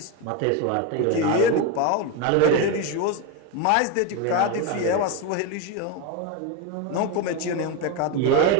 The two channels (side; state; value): both; different; correlation 0.03